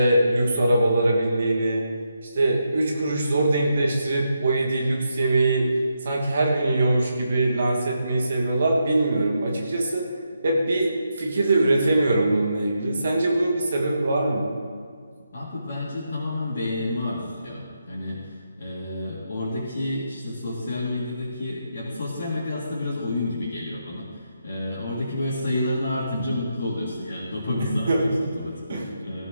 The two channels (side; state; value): both; inverted; correlation -0.83